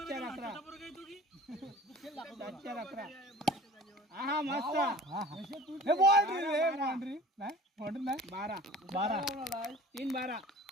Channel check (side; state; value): both; normal; correlation 0.44